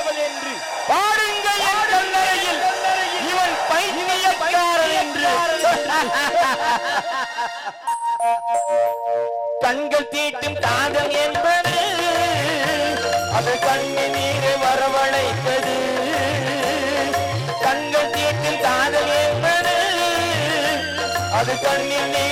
பாடுங்கள் என் கல்லறையில், இவன் பைத்தியக்காரன் என்று. கண்கள் தீட்டும் காதல் என்பது அது கண்ணின் நீரை வரவழைத்தது. கண்கள் தீட்டும் காதல் என்பது அது கண்ணின்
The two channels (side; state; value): both; identical; correlation 1.00